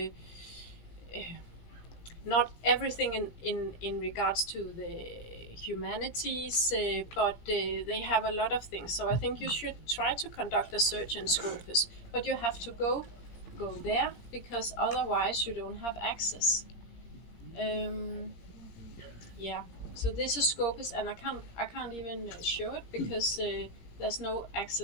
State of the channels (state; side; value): late; right; 17 ms